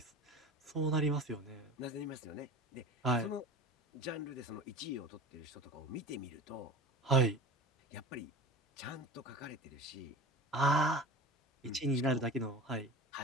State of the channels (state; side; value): normal; both; correlation 0.35